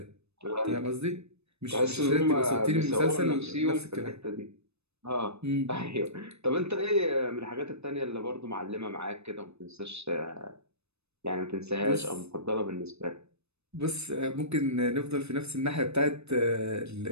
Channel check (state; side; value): late; left; 0.80 ms